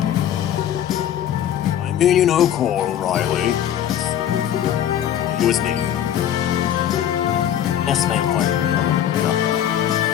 I mean you no quarrel, Riley. You his name. Yes, my lord.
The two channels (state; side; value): quieter; right; 10.5 dB